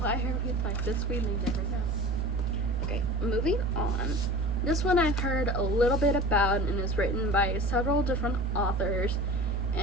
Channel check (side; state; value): both; normal; correlation 0.37